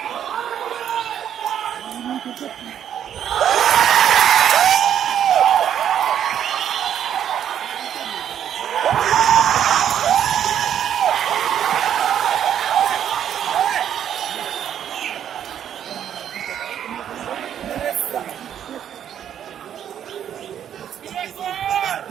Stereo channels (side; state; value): left; quieter; 9.7 dB